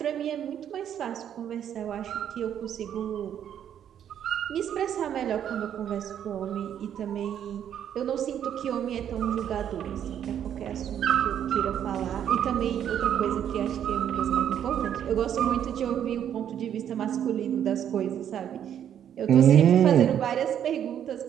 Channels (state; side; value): quieter; left; 9.6 dB